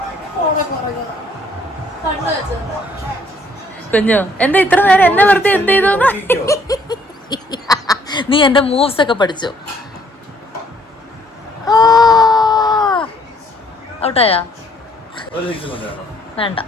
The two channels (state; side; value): normal; both; correlation 0.64